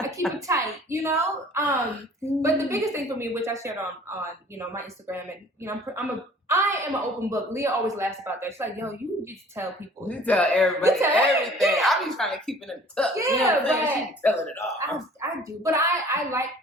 But the biggest thing for me, which I shared on my Instagram, and I am an open book. Leah always laughs about that. She's like, yo, you just tell people. You tell everybody everything. I be trying to keep it in the tuck. Yeah, but she be telling it all. I do, but I like.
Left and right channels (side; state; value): both; normal; correlation 0.51